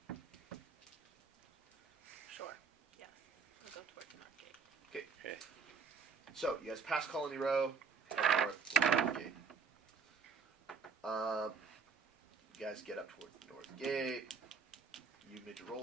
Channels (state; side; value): quieter; left; 5.6 dB